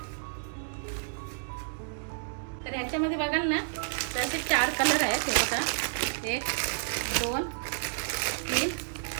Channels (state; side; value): silent; left; digital silence